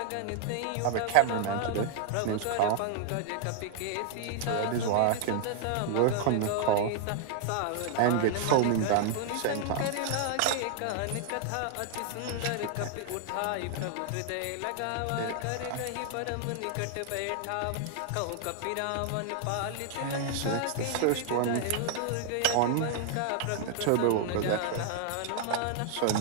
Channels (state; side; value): different; both; correlation 0.00